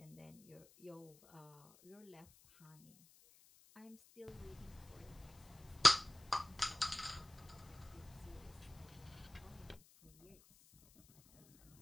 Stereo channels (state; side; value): noise; left; hiss, 25 dB below the sound